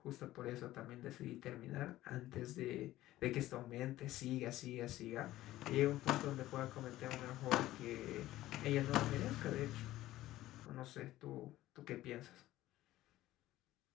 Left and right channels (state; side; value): quieter; right; 15.4 dB